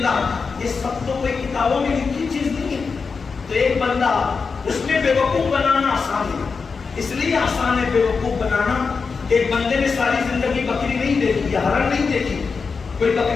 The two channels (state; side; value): quieter; right; 5.0 dB